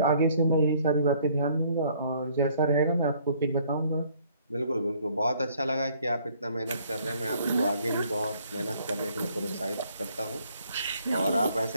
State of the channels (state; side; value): inverted; both; correlation -0.63